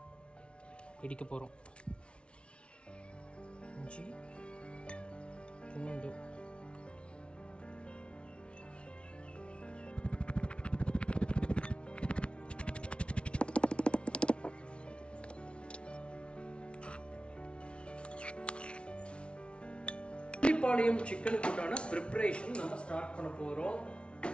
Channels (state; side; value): late; right; 0.059 ms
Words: இடிக்க போகிறோம். இஞ்சி, பூண்டு, பள்ளிப்பாளையம் சிக்கனுக்கு உண்டான ப்ரிப்பரேஷன் நம்ம ஸ்டார்ட் பண்ண போகிறோம்.